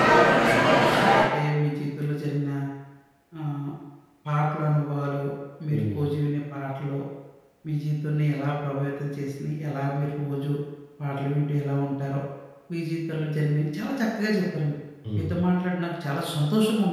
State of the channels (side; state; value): both; identical; correlation 1.00